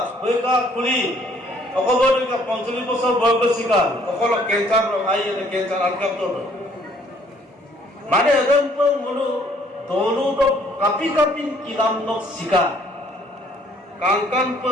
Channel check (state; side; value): normal; both; correlation 0.62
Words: hoika kuli অকলকা 45 বছর বয়স শিকার অকল ক্যান্সার আই এনে ক্যান্সার আলকাপ তো মানে এদম তো মনু দলু তো কাপি কিলাম ন শিকার কাঙ্কান তো